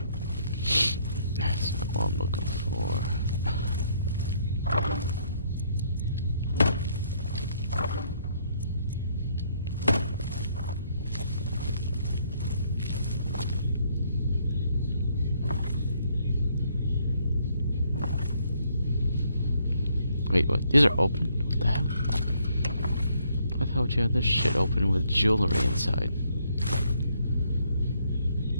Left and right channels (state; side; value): inverted; both; correlation -0.69